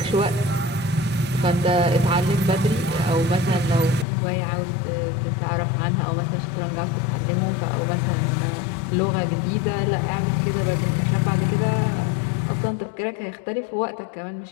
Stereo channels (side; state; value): right; drops out; at 4.0 s